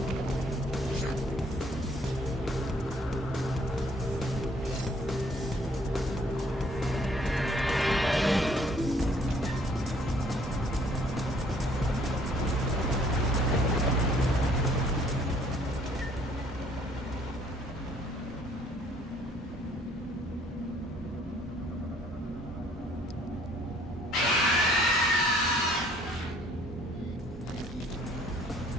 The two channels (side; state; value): both; normal; correlation 0.61